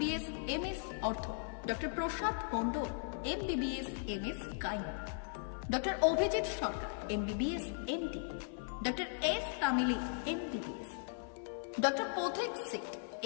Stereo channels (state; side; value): silent; right; 52 dB below the other